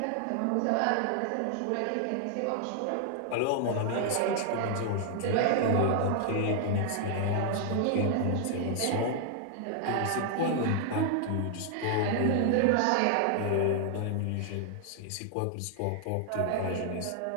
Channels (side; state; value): both; different; correlation 0.00